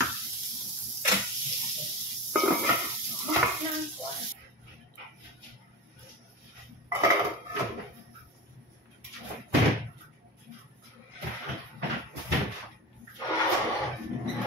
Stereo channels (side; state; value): both; normal; correlation 0.27